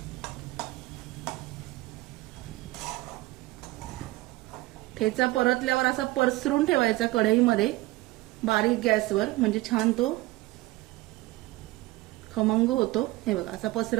ठेचा परतल्यावर असा पसरून ठेवायचा कढईमध्ये बारीक गॅसवर, म्हणजे छान तो खमंग होतो. हे बघा, असा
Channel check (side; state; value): left; quieter; 19.5 dB